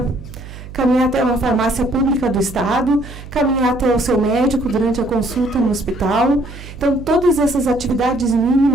Caminhar até uma farmácia pública do estado, caminhar até o seu médico durante a consulta no hospital. Então, todas essas atividades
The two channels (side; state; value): right; noise; hum, 14 dB below the sound